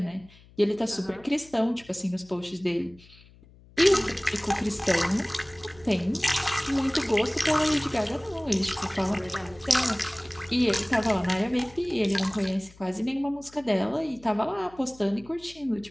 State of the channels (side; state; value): left; noise; hum, 25 dB below the sound